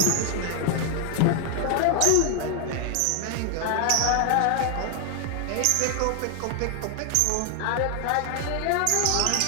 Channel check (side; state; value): both; different; correlation 0.00